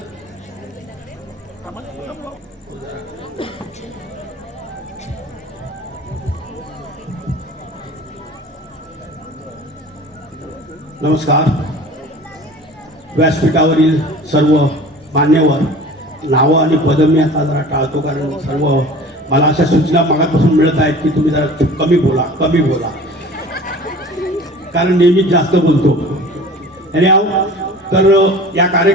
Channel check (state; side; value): normal; both; correlation 0.42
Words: नमस्कार. व्यासपीठावरील सर्व मान्यवर, नावं आणि पदं मी आता जरा टाळतो कारण सर्व मला अशा सूचना मागापासून मिळत आहेत की तुम्ही जरा कमी बोला कारण नेहमीच जास्त बोलतो. आणि तर या